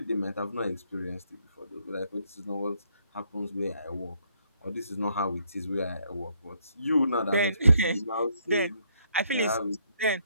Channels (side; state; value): both; inverted; correlation -0.71